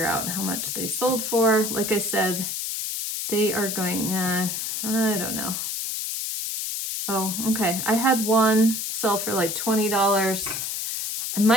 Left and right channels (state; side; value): noise; left; hiss, 3 dB below the sound